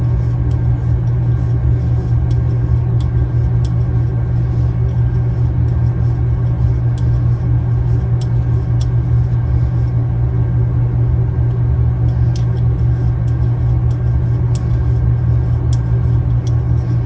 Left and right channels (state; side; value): identical; both; correlation 1.00